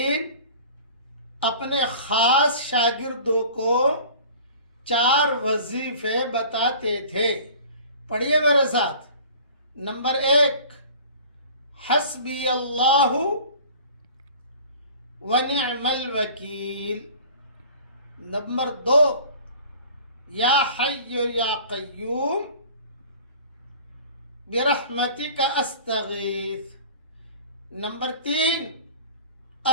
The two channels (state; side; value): inverted; both; correlation -0.44